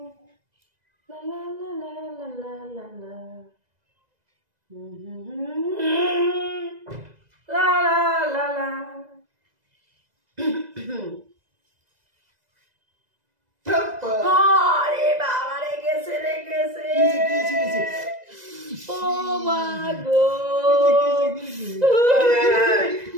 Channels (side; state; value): left; late; 2.0 ms